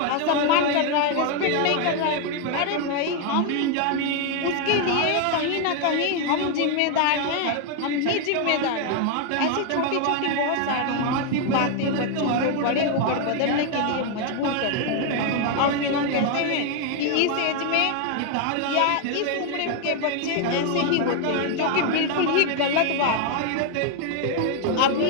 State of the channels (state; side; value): different; both; correlation 0.01